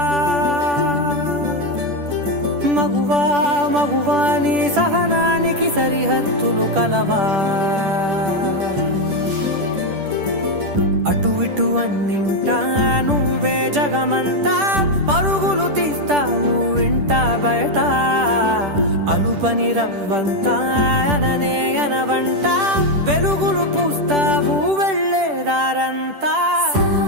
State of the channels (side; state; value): left; late; 10 ms